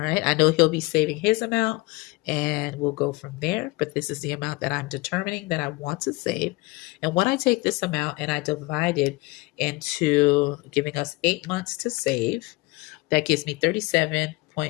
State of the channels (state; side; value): quieter; right; 23.2 dB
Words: I know he'll be saving his amount, and we'll go from there. But this is the amount that I'm determining that I want to save. And when I take this amount and I divide it into giving us 8 months to save, that gives me